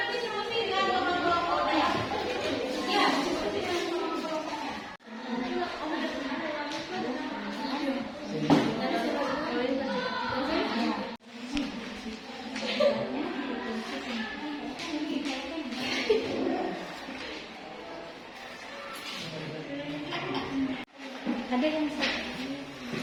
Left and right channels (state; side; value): identical; both; correlation 1.00